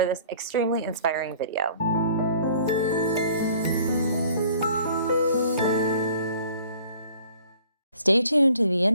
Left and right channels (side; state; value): both; inverted; correlation -0.53